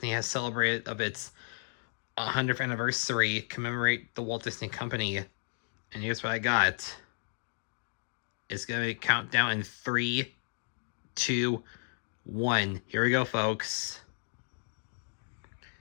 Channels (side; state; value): right; silent; digital silence